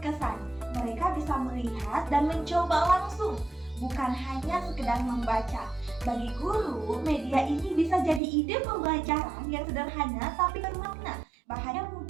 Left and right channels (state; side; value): drops out; left; at 8.2 s